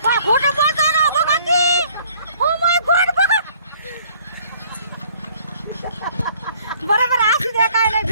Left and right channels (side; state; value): both; inverted; correlation -0.58